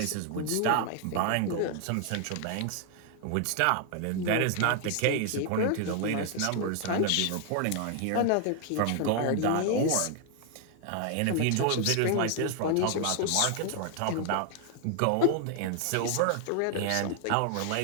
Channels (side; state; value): both; different; correlation 0.00